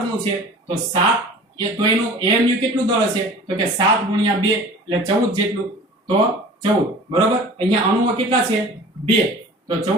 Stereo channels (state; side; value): normal; both; correlation 0.43